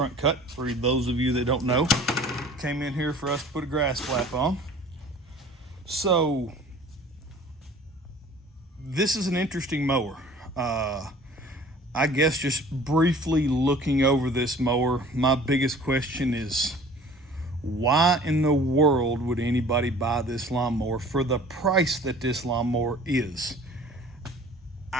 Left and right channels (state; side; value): normal; both; correlation 0.48